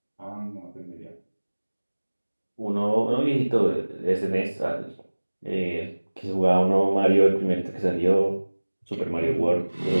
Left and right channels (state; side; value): inverted; both; correlation -1.00